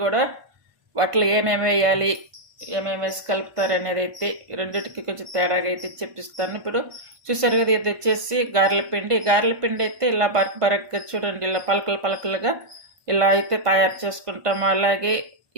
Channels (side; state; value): left; late; 1.5 ms